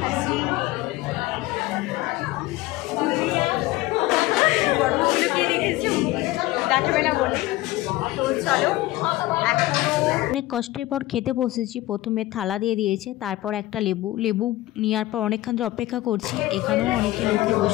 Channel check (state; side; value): quieter; right; 17.4 dB